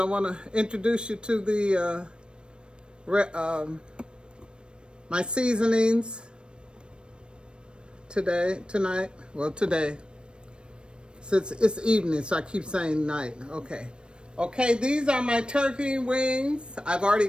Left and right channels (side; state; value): left; late; 0.055 ms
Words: want to introduce you to the my seasonings today. Since it's evening, so I keep saying night. Okay, these are my turkey wings. I've already